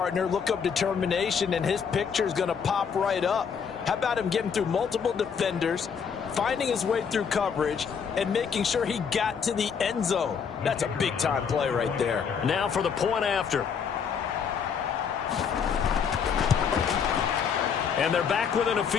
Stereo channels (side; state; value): right; quieter; 6.7 dB